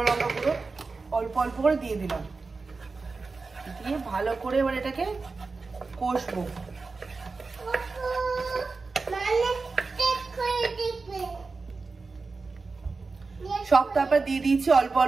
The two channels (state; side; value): quieter; left; 4.1 dB